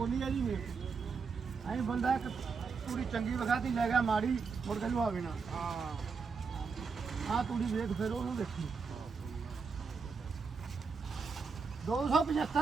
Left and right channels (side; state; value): left; quieter; 5.2 dB